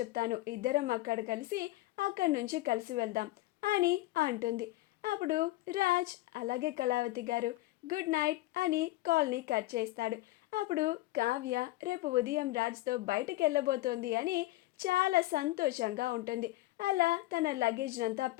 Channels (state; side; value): quieter; right; 18.2 dB